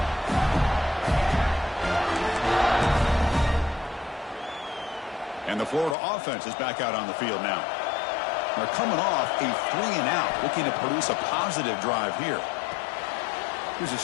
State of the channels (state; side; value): drops out; right; at 6.0 s